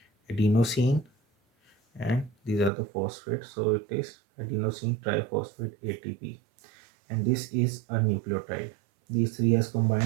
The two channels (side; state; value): left; drops out; at 2.7 s